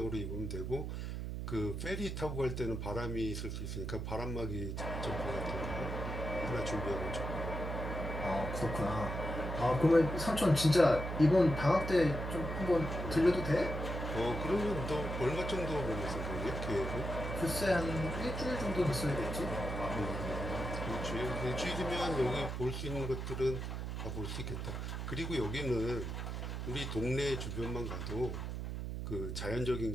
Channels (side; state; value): right; noise; hum, 4 dB below the sound